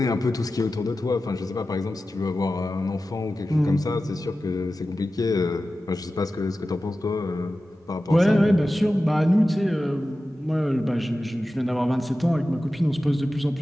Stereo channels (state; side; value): normal; both; correlation 0.94